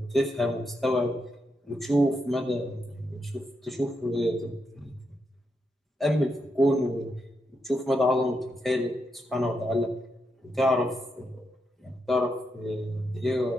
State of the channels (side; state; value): both; normal; correlation 0.83